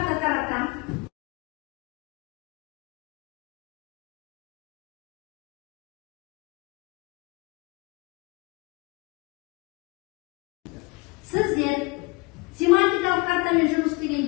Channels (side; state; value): right; quieter; 25.0 dB